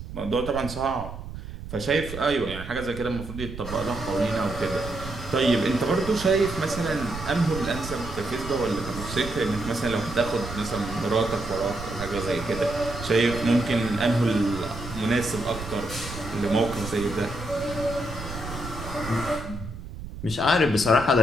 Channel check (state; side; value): noise; right; rumble, 10 dB below the sound